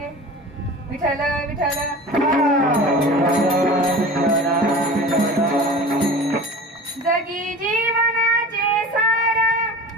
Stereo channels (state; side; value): normal; both; correlation 0.37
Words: विठ्ठल विठ्ठल. जगी जीवनाचे सार,